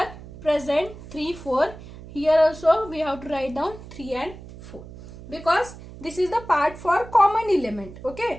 present 3, 4. Here also we have to write down 3 and 4. Because this is the part for common element.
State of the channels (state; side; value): noise; right; hum, 16 dB below the sound